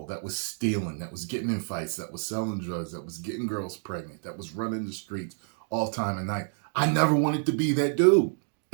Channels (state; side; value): silent; left; 57 dB below the other